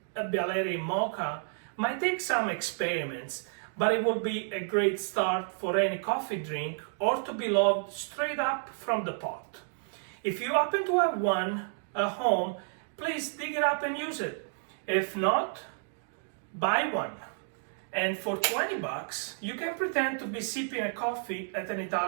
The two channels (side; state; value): left; silent; digital silence